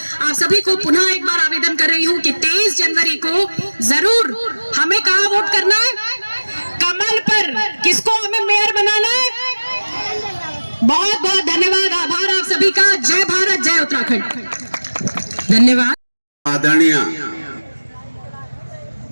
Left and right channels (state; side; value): inverted; both; correlation -1.00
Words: आप सभी को पुनः एक बार आवेदन कर रही हूं कि 23 जनवरी को जरूर हमें कहां वोट करना है, कमल पर। किसको हमें मेयर बनाना है। बहुत बहुत धन्यवाद, आभार आप सभी का। जय भारत, जय उत्तराखंड। धन्यवाद। आदरणीय